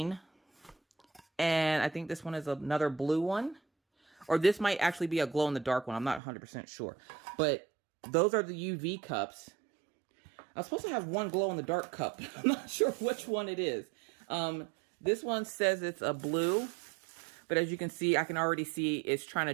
and I think this one is another blue one. Or this might actually be a glow-in-the-dark one. I'm not 100% sure. But those are the UV cups. I was supposed to have one glow-in-the-dark cup. I'm not sure which one it is. This one says it's a blue. But as you can see, I can already see it's trying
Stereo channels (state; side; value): drops out; left; at 6.2 s